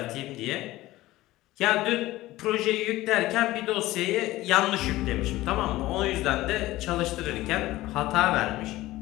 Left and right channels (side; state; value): right; quieter; 17.2 dB